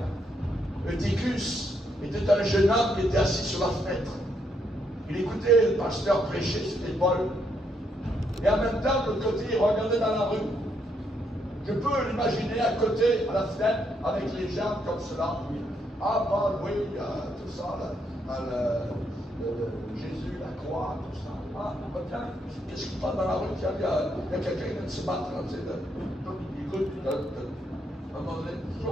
Eutychus était un jeune homme qui était assis sur la fenêtre. Il écoutait le pasteur prêcher, c'était Paul. Et en même temps, de l'autre côté, il regardait dans la rue. Je peux l'imaginer à côté, à la fenêtre, avec les gens comme cela. Ah, Paul, oui, tout ça, Jésus, la croix, tout ça. Ah, tiens, qu'est-ce qui passe dans la rue? Tiens, il y a quelqu'un qui vient de se battre. Il écoute, à un moment donné,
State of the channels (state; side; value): normal; both; correlation 0.76